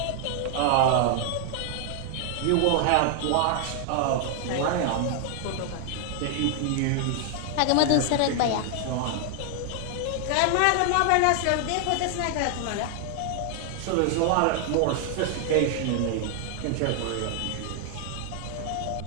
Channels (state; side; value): different; both; correlation 0.00